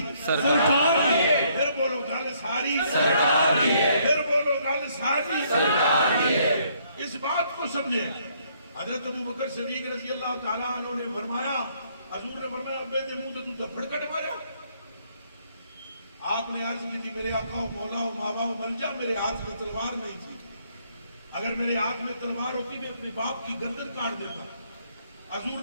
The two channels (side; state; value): both; inverted; correlation -0.68